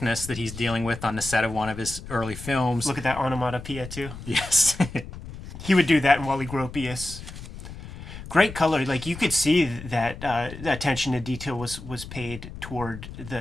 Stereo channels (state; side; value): noise; left; rumble, 12 dB below the sound